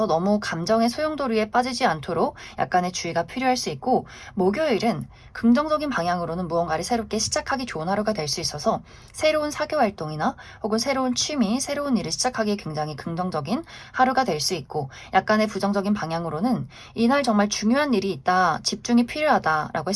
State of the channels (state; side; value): identical; both; correlation 1.00